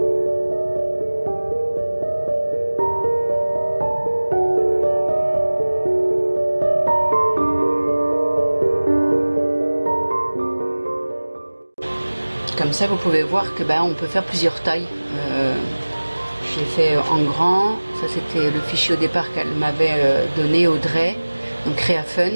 Comme ça vous pouvez voir que on peut faire plusieurs tailles. J'ai fait en grand, ça c'était le fichier au départ qu'elle m'avait donné, Audrey, donc Créa Fun.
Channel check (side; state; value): both; inverted; correlation -1.00